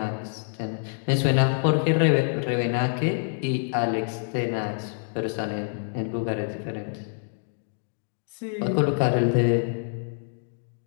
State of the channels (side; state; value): right; silent; digital silence